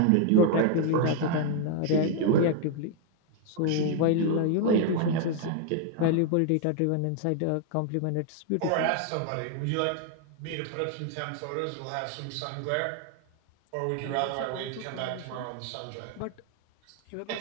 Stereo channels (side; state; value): both; different; correlation 0.00